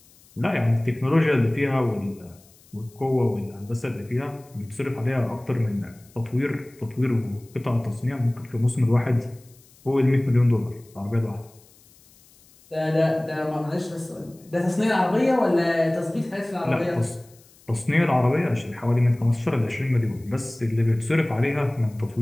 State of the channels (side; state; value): left; noise; hiss, 28 dB below the sound